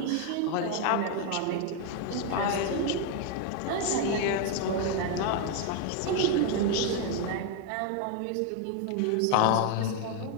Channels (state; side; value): different; both; correlation 0.01